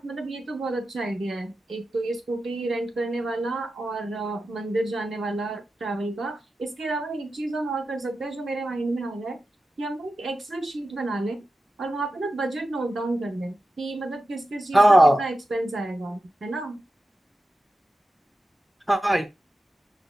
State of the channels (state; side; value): normal; both; correlation 0.92